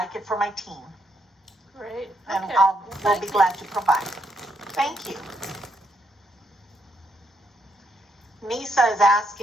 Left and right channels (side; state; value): both; normal; correlation 0.76